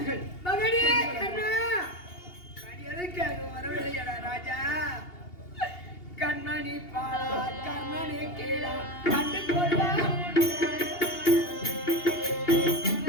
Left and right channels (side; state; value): right; late; 2.8 ms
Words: மகனே கண்ணா, எதற்காக வரவில்லையடா ராஜா? கண்மணி பாலா, கண்மணி கீழா கண்டு கொள்ளா.